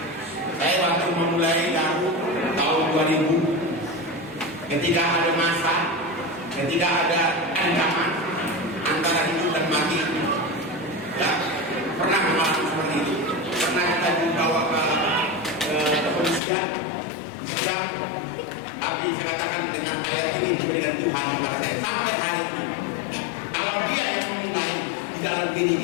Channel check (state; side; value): drops out; right; at 16.4 s